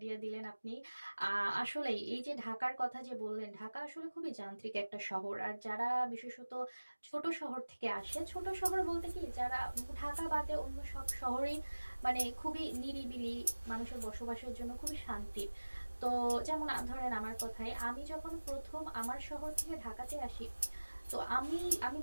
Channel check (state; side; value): inverted; both; correlation -1.00